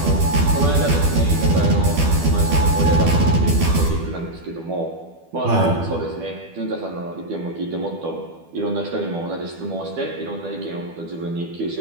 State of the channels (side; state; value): left; late; 12 ms